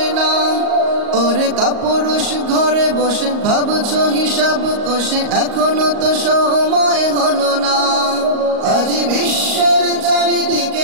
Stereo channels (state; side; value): late; left; 38 ms